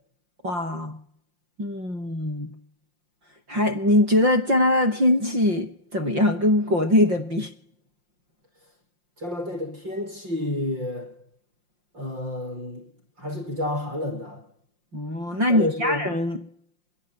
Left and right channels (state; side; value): late; left; 5.7 ms